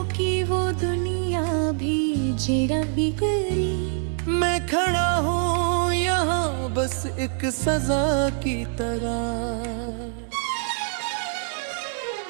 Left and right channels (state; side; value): silent; left; 61 dB below the other